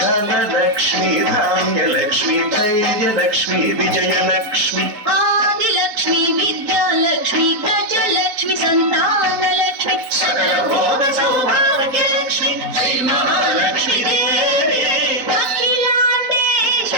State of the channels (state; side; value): late; left; 4.2 ms